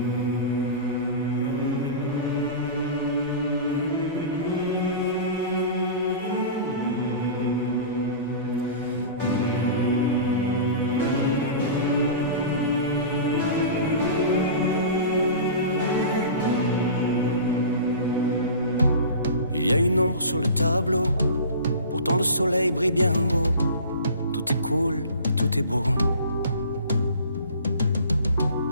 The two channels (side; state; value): both; inverted; correlation -0.37